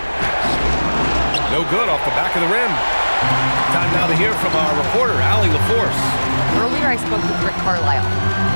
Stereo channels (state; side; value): inverted; both; correlation -1.00